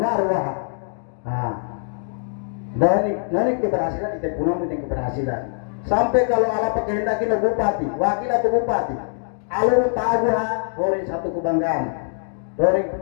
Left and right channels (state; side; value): silent; right; digital silence